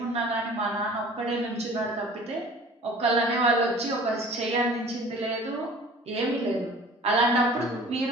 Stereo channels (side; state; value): both; normal; correlation 0.46